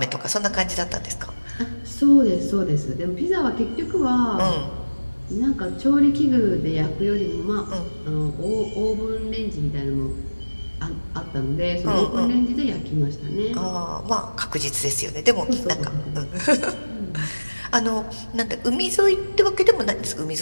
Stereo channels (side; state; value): both; inverted; correlation -1.00